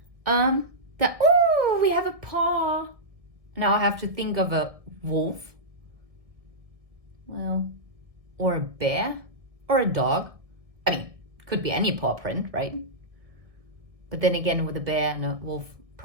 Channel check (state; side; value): late; left; 1.6 ms